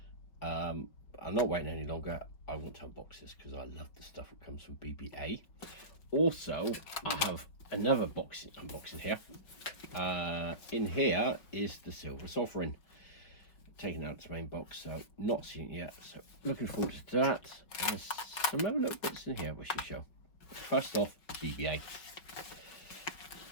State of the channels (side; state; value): right; late; 5.1 ms